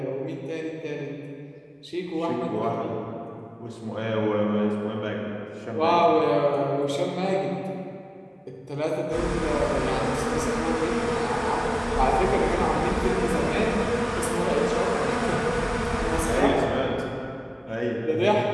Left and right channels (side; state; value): both; identical; correlation 1.00